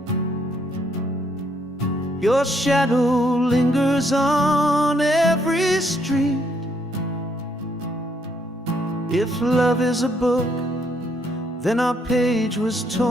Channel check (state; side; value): normal; both; correlation 0.71